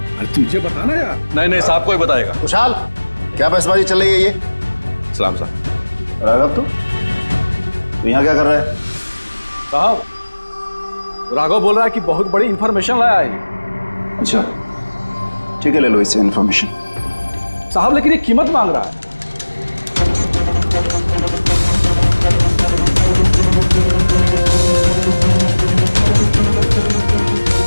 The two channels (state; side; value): inverted; both; correlation -1.00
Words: अरे तुझे बताना यार। नहीं, साहब को ही बताएगा। खुशहाल, क्या बहसबाजी चल रही है ये? सलाम साहब। राघव, तू यहाँ क्या कर रहा है? साहब, राघव बोल रहा है कि बहुत बड़ी इन्फॉर्मेशन लाया है। अच्छा, ठीक है, ले लो इससे इन्फॉर्मेशन। साहब लेकिन ये कीमत मांग रहा है।